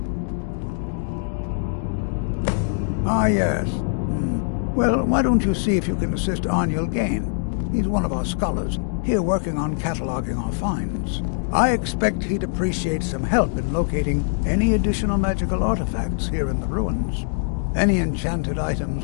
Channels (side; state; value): right; silent; digital silence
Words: Ah, yes. Well, why don't you see if you can assist Arniel Gain? He's one of our scholars, here working on cataloging our finds. I expect he'd appreciate some help in locating any additional magical artifacts here in the ruins. Any enchanted items